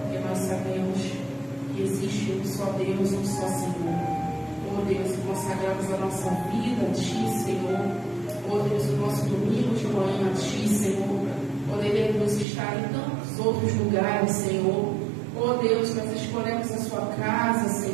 Porque nós sabemos que existe um só Deus, um só Senhor. Oh Deus, consagramos a nossa vida a ti, Senhor. Oh Deus, o nosso domingo de manhã a ti, Senhor. Poderemos estar em tantos outros lugares, Senhor. Oh Deus, nós escolhemos a sua casa,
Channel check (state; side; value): drops out; left; at 12.5 s